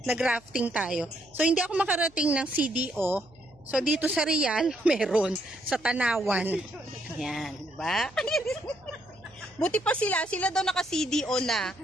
Nag-rafting tayo. So, hindi ako makarating ng CDO. So, dito sa Real, meron. Sa Tanawan. Ayan, diba? Buti pa sila. Sila daw naka-CDO na.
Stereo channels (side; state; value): left; noise; hum, 27 dB below the sound